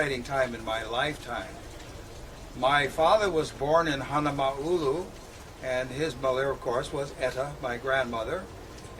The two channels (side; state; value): both; identical; correlation 1.00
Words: time in my lifetime. My father was born in Hanama'ulu, and his mother, of course, was Etta, my grandmother.